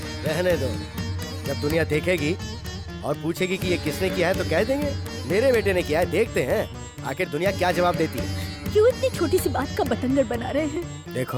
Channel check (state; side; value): identical; both; correlation 1.00